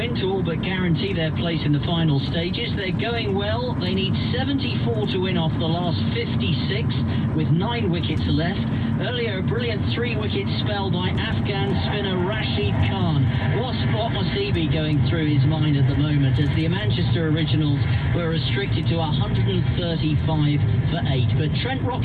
to all but guarantee their place in the final stages. They're going well. They need 74 to win off the last 56 with 9 wickets left. Earlier, a brilliant 3-wicket spell by Afghan spinner Rashid Khan. What must he be going through his mind at the moment as the Manchester Originals were restricted to 135 for 8. But Trent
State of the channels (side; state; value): both; identical; correlation 1.00